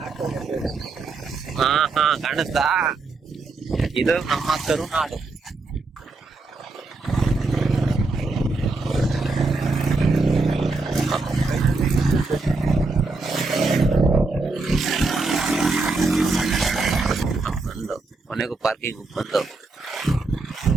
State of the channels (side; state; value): left; quieter; 3.7 dB